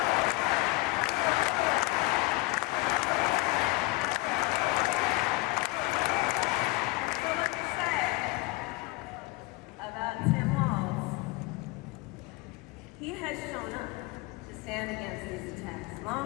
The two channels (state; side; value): quieter; right; 22.3 dB